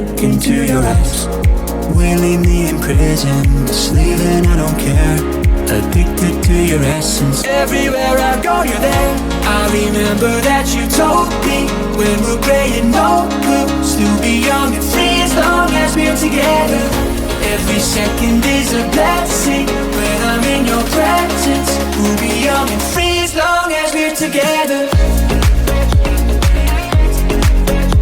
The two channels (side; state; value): both; identical; correlation 1.00